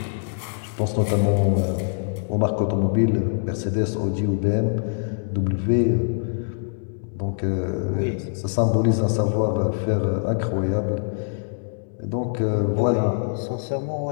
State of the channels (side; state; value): right; silent; digital silence